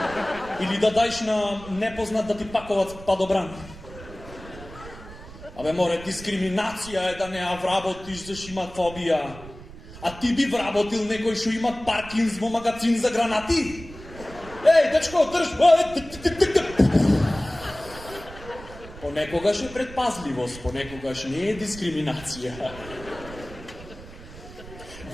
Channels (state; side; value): noise; right; rumble, 16 dB below the sound